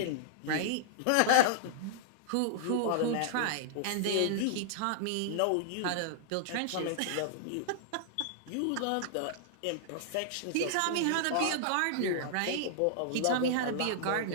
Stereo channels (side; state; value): both; different; correlation -0.01